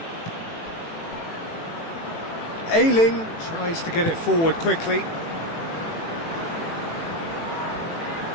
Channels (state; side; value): late; right; 18 ms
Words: Ayling tries to get it forward quickly.